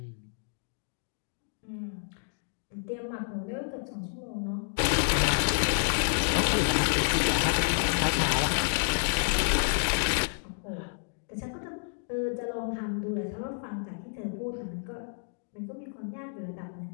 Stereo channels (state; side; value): silent; right; digital silence